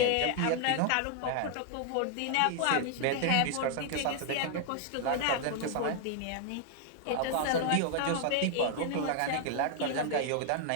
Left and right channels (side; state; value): both; different; correlation 0.00